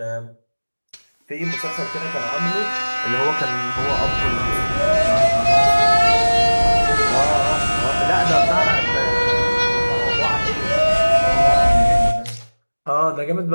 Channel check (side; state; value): both; inverted; correlation -1.00